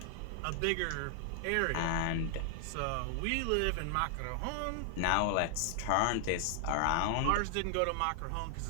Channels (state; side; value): different; both; correlation 0.00